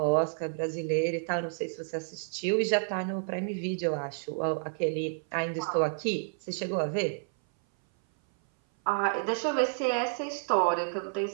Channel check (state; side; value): silent; left; 57 dB below the other